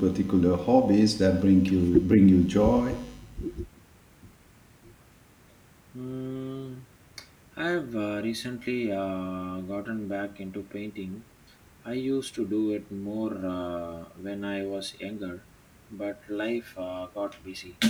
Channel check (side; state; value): both; identical; correlation 1.00